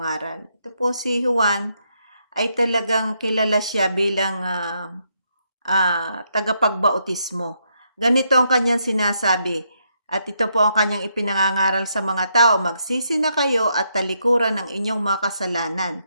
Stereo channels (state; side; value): inverted; both; correlation -0.78